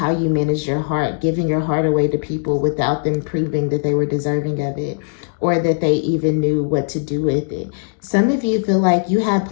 you manage your heart, giving your heart away to people without them proving that they were deserving of it, or that they even knew what to do with it. Some of you feel like you had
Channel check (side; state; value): right; silent; digital silence